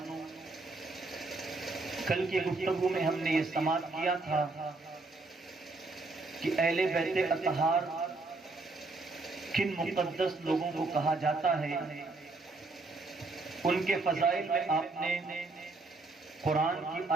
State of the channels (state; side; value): quieter; left; 3.5 dB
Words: کل کے گفتگو میں ہم نے یہ سماعت کیا تھا کہ اہل بیت اطہار کن مقدس لوگوں کو کہا جاتا ہے۔ ان کے فضائل میں آپ نے قرآن کی